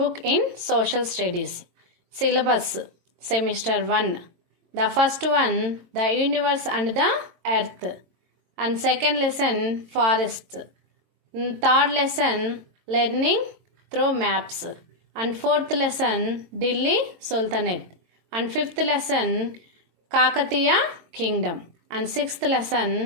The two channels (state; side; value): late; left; 22 ms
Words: in Social Studies, syllabus semester 1. The first one, the universe and the earth, and second lesson, forest, third lesson, learning through maps, and fourth lesson, Delhi Sultanate, and fifth lesson, Kakatiya Kingdom, and sixth lesson,